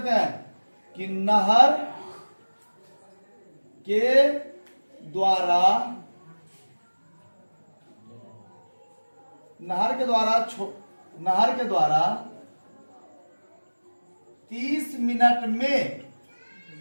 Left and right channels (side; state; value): both; inverted; correlation -1.00